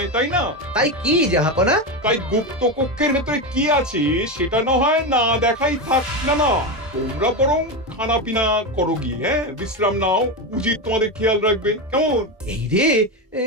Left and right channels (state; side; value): normal; both; correlation 0.15